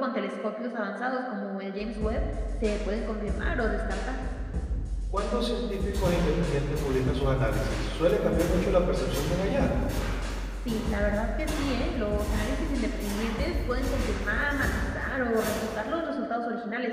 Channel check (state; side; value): identical; both; correlation 1.00